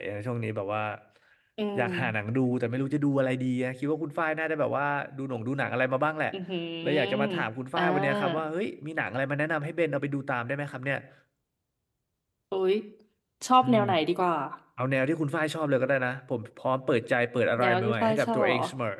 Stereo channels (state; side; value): identical; both; correlation 1.00